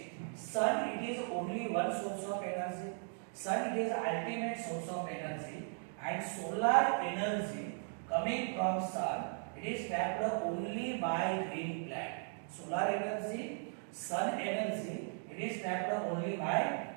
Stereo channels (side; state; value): left; silent; 53 dB below the other